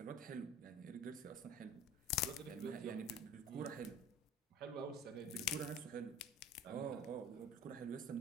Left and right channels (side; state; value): both; normal; correlation 0.43